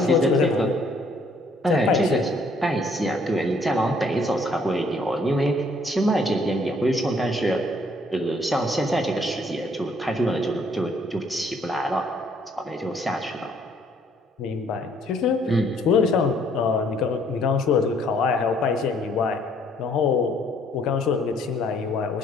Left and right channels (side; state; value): both; normal; correlation 0.64